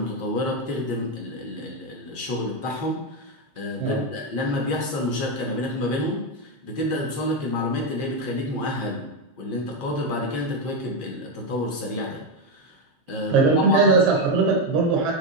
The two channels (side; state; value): left; late; 7.5 ms